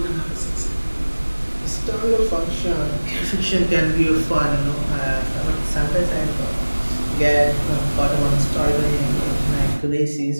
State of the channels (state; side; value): inverted; both; correlation -1.00